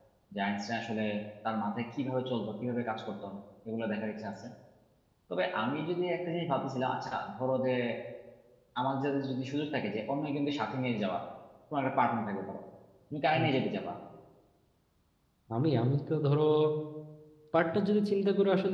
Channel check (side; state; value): both; identical; correlation 1.00